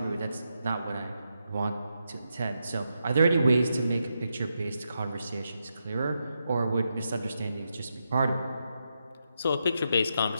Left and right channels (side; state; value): both; inverted; correlation -0.84